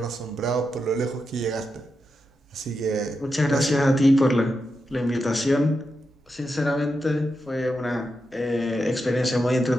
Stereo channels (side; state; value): both; normal; correlation 0.87